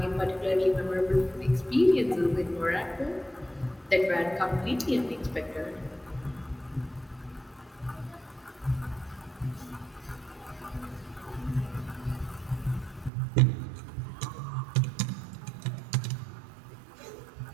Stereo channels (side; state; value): left; drops out; at 13.1 s